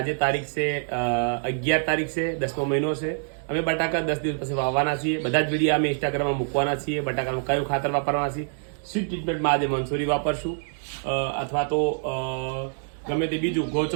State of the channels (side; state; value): left; silent; 61 dB below the other